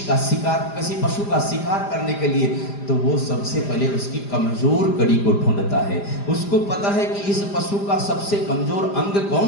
का शिकार, किसी पशु का शिकार करने के लिए, तो वो सबसे पहले उसकी कमजोर कड़ी को ढूंढता है। उसको पता है कि इस पशु का सबसे कमजोर अंग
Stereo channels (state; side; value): late; right; 5.0 ms